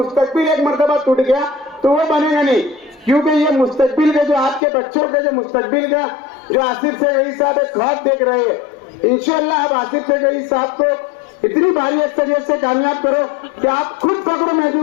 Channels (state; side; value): drops out; right; at 4.6 s